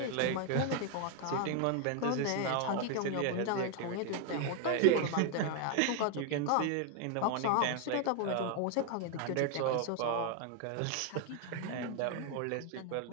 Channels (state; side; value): different; both; correlation 0.01